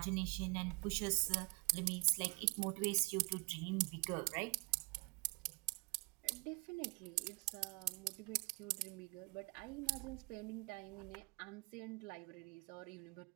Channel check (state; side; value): quieter; left; 30.4 dB